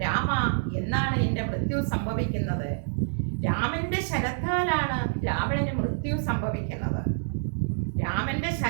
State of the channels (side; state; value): left; silent; digital silence